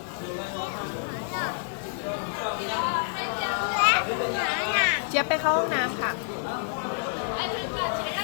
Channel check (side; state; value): right; silent; digital silence